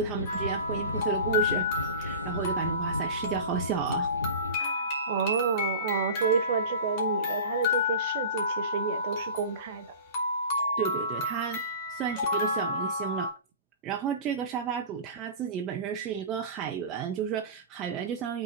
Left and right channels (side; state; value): both; inverted; correlation -0.34